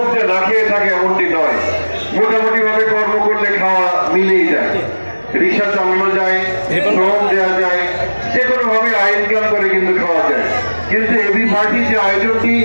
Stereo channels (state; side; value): inverted; both; correlation -1.00